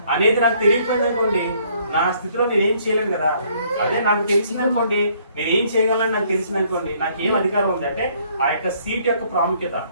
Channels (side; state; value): both; inverted; correlation -0.64